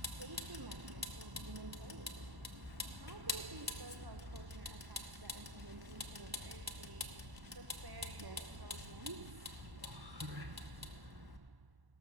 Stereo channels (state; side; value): late; left; 1.1 ms